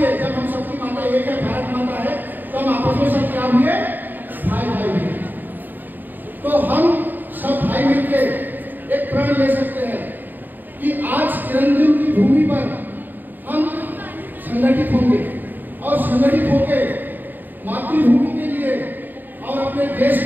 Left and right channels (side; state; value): left; late; 0.089 ms